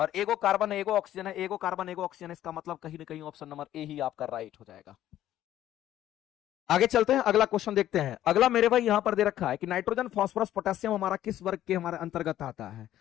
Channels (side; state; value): right; quieter; 12.6 dB